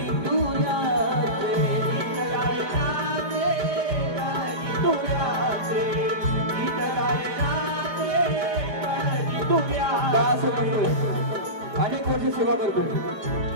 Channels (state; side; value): late; left; 4.9 ms